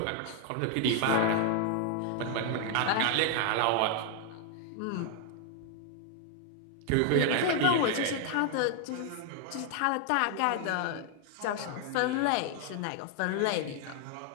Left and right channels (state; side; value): different; both; correlation 0.00